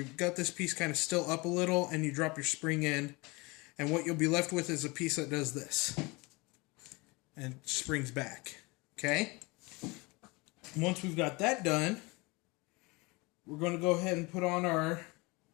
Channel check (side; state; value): right; quieter; 25.4 dB